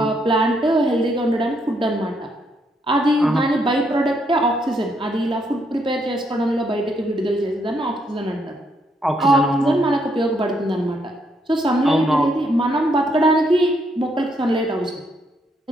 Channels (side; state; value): both; normal; correlation 0.75